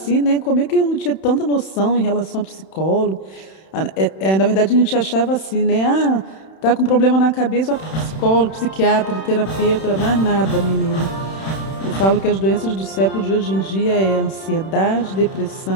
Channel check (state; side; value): late; right; 31 ms